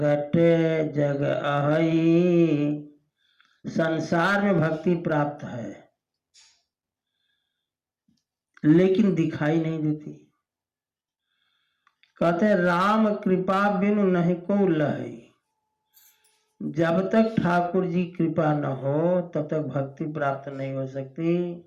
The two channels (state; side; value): identical; both; correlation 1.00